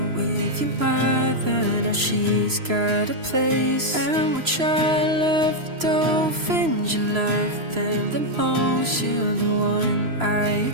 with your mother, now she's got a place. And we'll try to love the dolphins, you love them the most. You're the one I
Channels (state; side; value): late; left; 3.0 ms